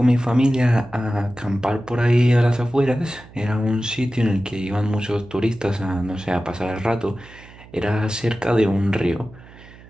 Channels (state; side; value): noise; right; hum, 21 dB below the sound